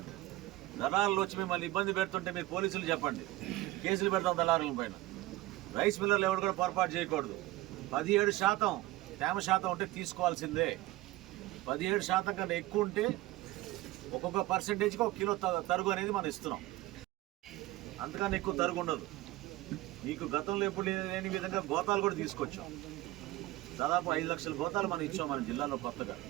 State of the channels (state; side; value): quieter; left; 18.1 dB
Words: దళారులు వచ్చి మిమ్మల్ని ఇబ్బంది పెడుతుంటే మీరు పోలీసులు చెప్పండి, కేసులు పెడతాం దళారుల పైన. రైస్ మిల్లర్లు ఎవరు కూడా పొరపాటు చేయకూడదు. 17% తేమ శాతం ఉంటే తీసుకోవాల్సిందే. 17% కన్నా ఎక్కువ ఉంటే ఒక్కొక్క పర్సెంటేజ్కి 1 కిలో తరుగు అనేది మనం ఇస్తున్నాం. అంతకన్నా ఎక్కువ తరుగు ఉండదు. మీకు గతంలో ఎప్పుడు లేని విధంగా గోతాలు కూడా తీసుకొచ్చాం. దాదాపు 5 లక్షల గోతాలు మనం ఇచ్చాం మన జిల్లాలో కొత్తగా.